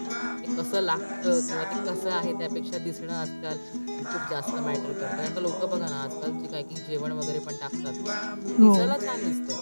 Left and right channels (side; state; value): both; inverted; correlation -1.00